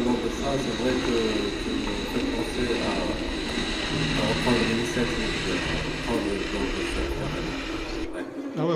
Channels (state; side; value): identical; both; correlation 1.00